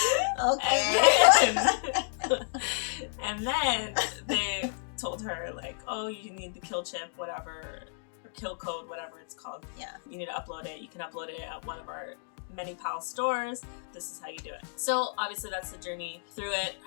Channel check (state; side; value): silent; right; digital silence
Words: Okay. and then they told her like, oh, you need the kill chip, whatever, or kill code, whatever it's called. Yeah. You need to upload it. You can upload it at one of our many pal stores. This is how you do it. So obviously that's the journey through it.